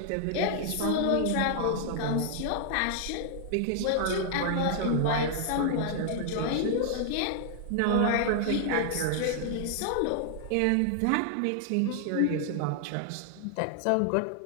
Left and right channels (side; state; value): both; different; correlation -0.01